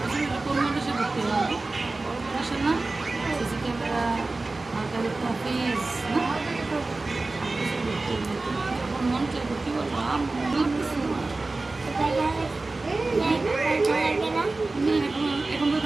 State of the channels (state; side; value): quieter; left; 3.3 dB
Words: হলে কোন মানুষে ভর্তি হবে? বড় মানুষের না সিসি ক্যামেরা মার্কারিতা ফিস না 7 বছর ভর্তি হলে তুমি যখন মন চাইবো কি বলবো মন লাগতেছে না তুমি এখন